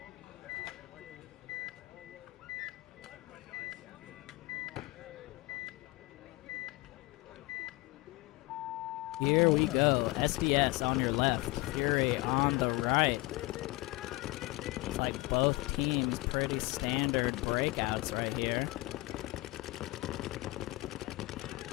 Here we go. SDS on your left, Fury on the right. Looks like both teams pretty standard breakouts right here.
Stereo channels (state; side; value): quieter; right; 21.6 dB